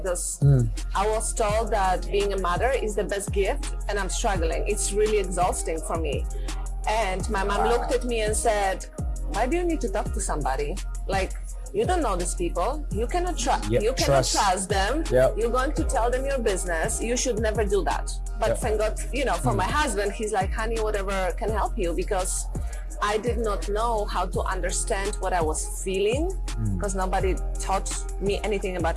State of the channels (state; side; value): identical; both; correlation 1.00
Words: I was told that being a mother is the best gift and I'm struggling. It's really exhausting for me. And my mom looked at me and said, why do you need to talk to somebody? Like, you don't know these people. You cannot trust them. Yep. You're going to tell them your business. You should never do that. But thank God, you know, for my husband, he's like, honey, whatever can help you, because I did not know how to understand what I was feeling because nobody taught me anything about